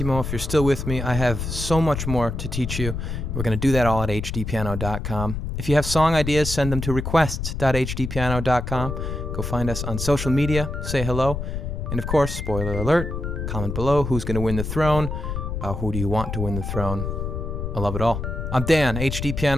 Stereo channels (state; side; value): noise; left; rumble, 4 dB below the sound